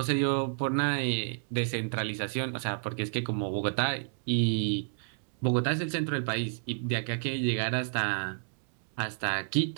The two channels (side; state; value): left; silent; digital silence